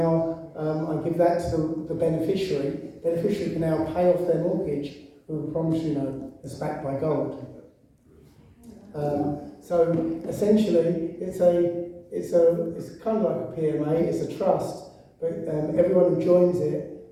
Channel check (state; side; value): identical; both; correlation 1.00